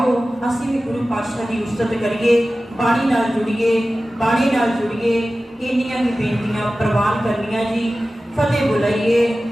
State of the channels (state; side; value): normal; both; correlation 0.95